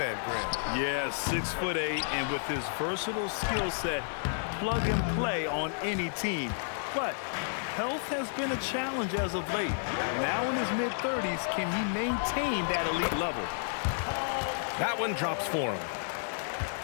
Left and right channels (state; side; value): silent; right; 57 dB below the other